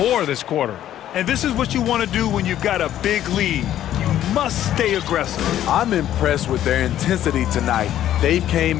this quarter. And this is what you want to do when you've got a big lead. You must stay aggressive. I'm impressed with their intensity tonight. They've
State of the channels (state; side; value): quieter; right; 11.9 dB